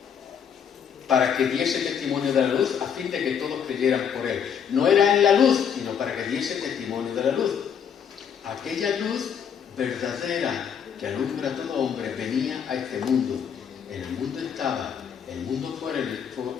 para que diese testimonio de la luz, a fin de que todos creyeran por Él. No era en la luz, sino para que diese testimonio de la luz. Aquella luz verdadera que alumbra a todo hombre venía a este mundo. En el mundo estaba, el mundo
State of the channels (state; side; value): quieter; right; 7.8 dB